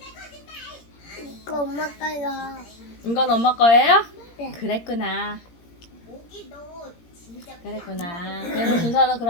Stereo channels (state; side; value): late; right; 17 ms